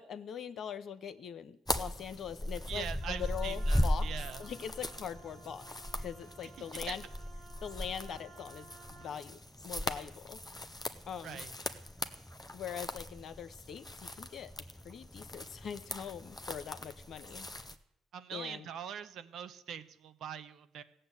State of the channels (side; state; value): both; normal; correlation 0.79